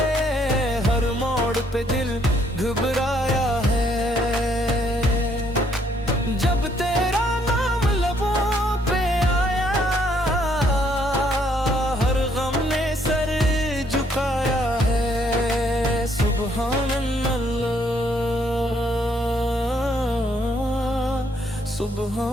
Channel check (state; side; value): normal; both; correlation 0.69